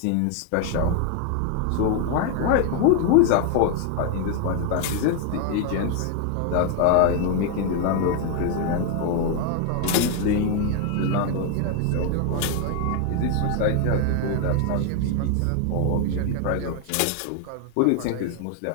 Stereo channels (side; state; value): both; different; correlation 0.01